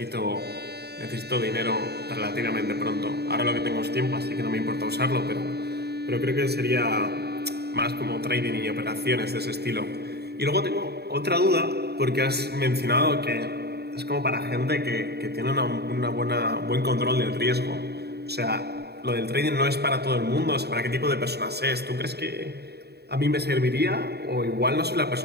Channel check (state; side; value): late; left; 0.47 ms